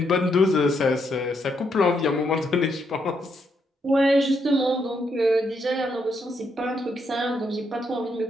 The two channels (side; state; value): both; normal; correlation 0.77